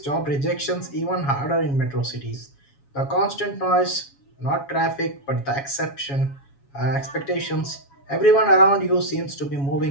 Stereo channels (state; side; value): late; right; 7.2 ms